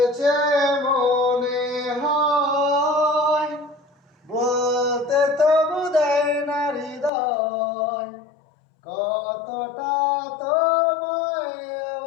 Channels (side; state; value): right; drops out; at 7.1 s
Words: মনে হয়, বলতে তবু দেয় না হৃদয়, কতটা তোমায়